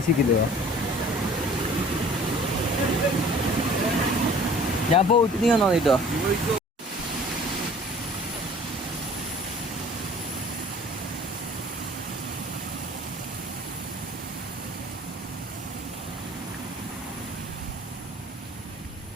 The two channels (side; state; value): both; normal; correlation 0.49